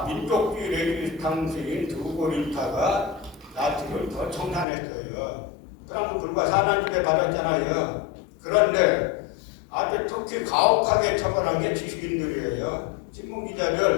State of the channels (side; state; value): right; drops out; at 4.7 s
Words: 민족주의 레지스탕스인 드우고린파가 나치를 더 청산했어요. 그럼 불과 4년 중에 받았잖아요. 그런데 아주 특히 가혹하게 처벌한 게 지식인들이에요.